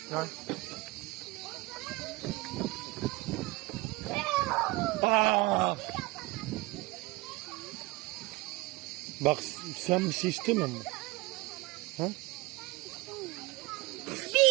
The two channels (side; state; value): left; quieter; 22.5 dB